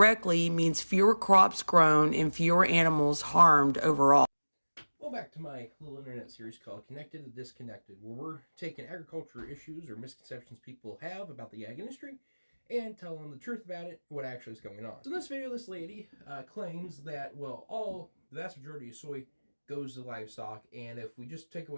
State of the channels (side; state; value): both; inverted; correlation -1.00